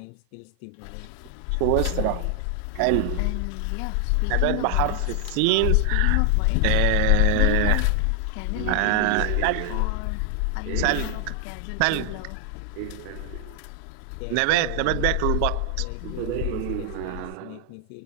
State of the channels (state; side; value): different; both; correlation 0.00